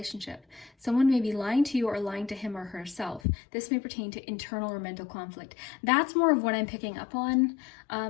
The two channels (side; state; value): right; drops out; at 3.2 s